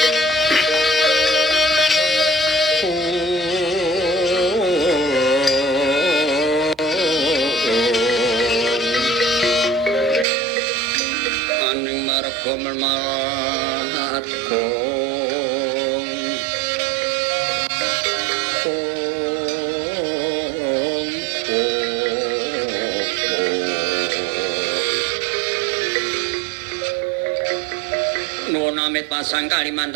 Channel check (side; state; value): left; drops out; at 10.2 s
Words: Komel malat kong nuwun amit pasang kaliman